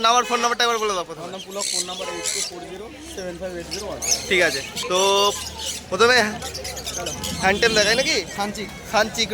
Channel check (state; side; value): identical; both; correlation 1.00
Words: নাম্বার, ফোন নাম্বারটা একবার বলে দাও প্রথমে। আমার নাম পুলক, ফোন নাম্বার 8240758001। ঠিক আছে, তো প্রথমে হ্যান্ডটেম দেখায় নাকি? সানচিক। সানচিক